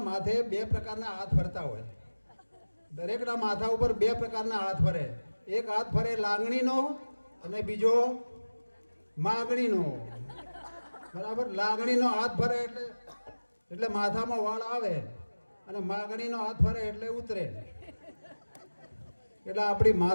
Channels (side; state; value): both; inverted; correlation -1.00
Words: માથે 2 પ્રકારના હાથ ફરતા હોય. દરેકના માથા ઉપર 2 પ્રકારના હાથ ફરે. એક હાથ ફરે લાગણીનો અને બીજો માગણીનો, બરાબર. લાગણીનો હાથ ફરે એટલે માથામાં વાળ આવે અને માગણીનો હાથ ફરે એટલે ઉતરે. એટલે આપણી